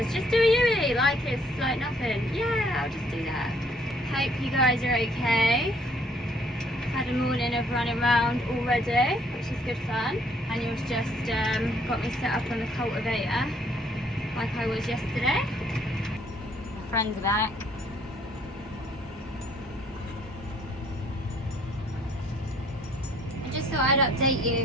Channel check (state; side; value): normal; both; correlation 0.63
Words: just do a U-E like it's like nothing. Yeah, I'll just do that. Hope you guys are okay. Had a morning of running around already, which is good fun. Daniel's just got me set up on the cultivator like I was yesterday. My friends are back. I just thought I'd update